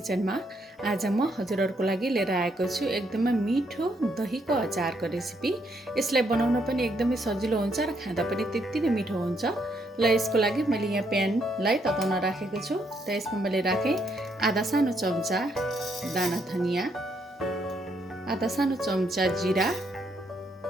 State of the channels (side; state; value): both; normal; correlation 0.74